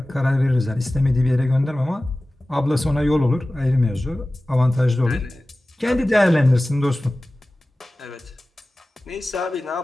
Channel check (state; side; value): normal; both; correlation 0.97